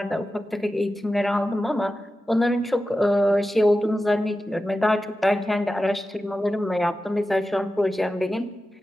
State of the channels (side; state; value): both; normal; correlation 0.93